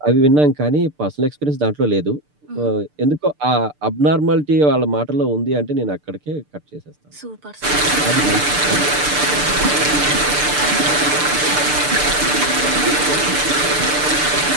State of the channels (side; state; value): left; late; 6.7 ms